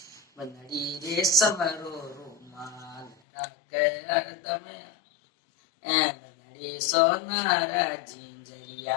બંદડી રેશમ રો રૂમાલ રાખે હરદમ બંદડી સોનારા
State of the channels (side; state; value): right; drops out; at 3.2 s